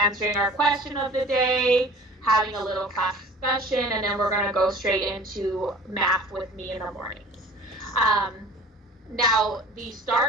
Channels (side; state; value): both; normal; correlation 0.44